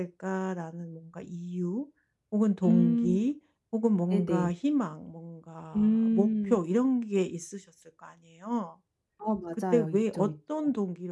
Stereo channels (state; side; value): identical; both; correlation 1.00